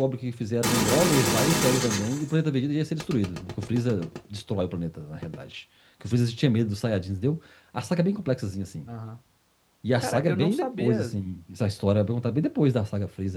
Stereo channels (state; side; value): identical; both; correlation 1.00